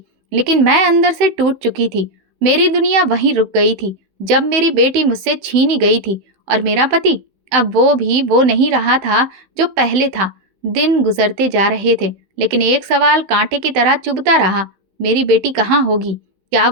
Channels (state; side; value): late; left; 16 ms